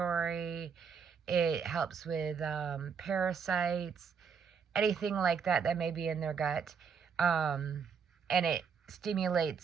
It helps with parasites, anything like that may be in their gut. And it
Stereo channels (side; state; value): left; quieter; 6.4 dB